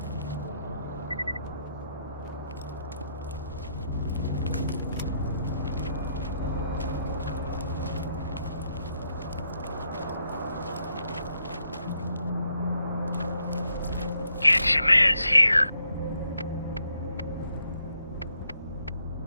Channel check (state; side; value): inverted; both; correlation -0.76